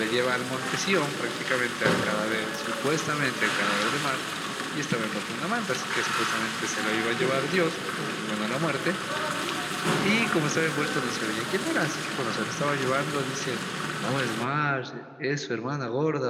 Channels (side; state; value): both; identical; correlation 1.00